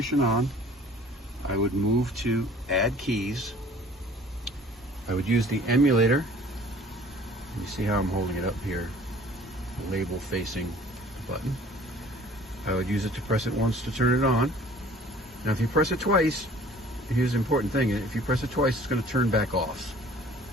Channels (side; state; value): both; normal; correlation 0.51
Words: on, I would move to add keys. I would use the emulator. You see how I'm holding it up here, the label facing the button. I would use it to press it once to turn it on. Now if you press it twice, here's the important thing, if you press it twice, it's going to turn back off.